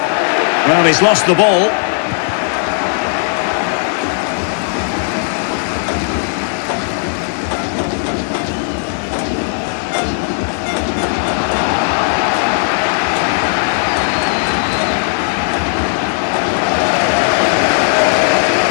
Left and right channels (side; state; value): right; silent; 58 dB below the other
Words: Well, he's lost the ball.